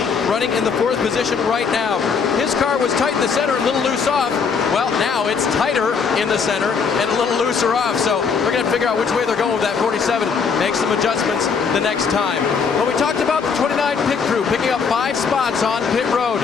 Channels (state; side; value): quieter; right; 5.7 dB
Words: running in the 4th position right now. His car was tight in the center, a little loose off. Well, now it's tighter in the center and a little looser off. So we're going to figure out which way they're going with that 47. Make some adjustments the next time. But we talked about the 29 pit crew picking up 5 spots on pit road.